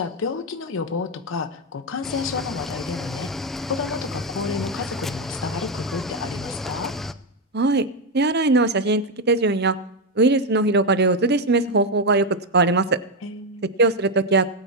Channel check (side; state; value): both; normal; correlation 0.07